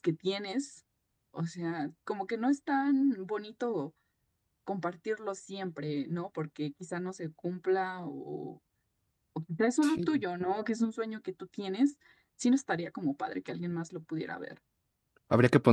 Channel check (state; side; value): identical; both; correlation 1.00